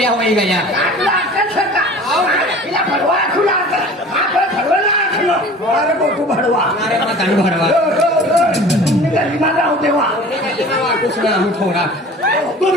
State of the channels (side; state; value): both; normal; correlation 0.43